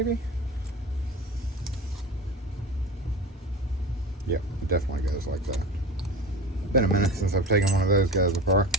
Yeah, it definitely goes like that. Been a minute since I've taken one of those guys apart.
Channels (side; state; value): both; normal; correlation 0.32